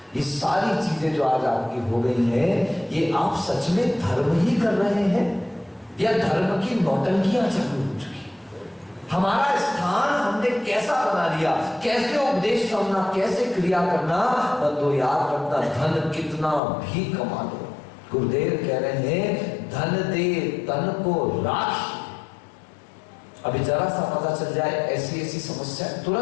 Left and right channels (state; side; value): drops out; right; at 16.6 s